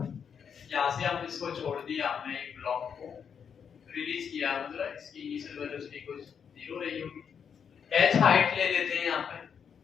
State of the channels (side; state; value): right; quieter; 7.2 dB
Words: यहाँ से हम इसको छोड़ दिया, हमने एक ब्लॉक को रिलीज किया, मतलब इसकी इनिशियल वेलोसिटी कुछ 0 रही होगी। h हाइट ले लेते हैं यहाँ पे।